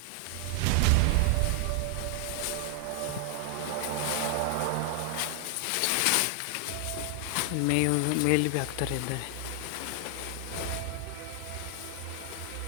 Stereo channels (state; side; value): different; both; correlation 0.00